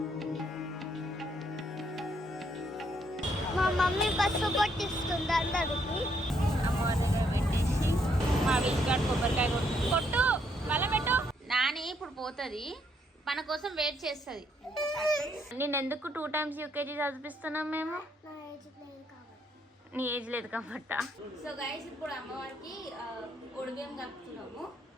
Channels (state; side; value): normal; both; correlation 0.72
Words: మా మమ్మీ బస్సు కొట్టిస్తుంది అందరికి. అమ్మవారిగా పెట్టేసి మా విజ్గాడ్ కొబ్బరికాయ కొట్టు మళ్ళీ పెట్టు. నాని ఇప్పుడు పోతుంది, మన కోసం వెయిట్ చేస్తుంది. నేను ఎందుకు 2 times యూకేజీ చదివిస్తున్నాం మేము? నీ ఏజ్ లేదు కాబట్టి. సో గైస్ ఇప్పుడు అమ్మవారికి ఒడిబియ్యం కలుపుతున్నాము.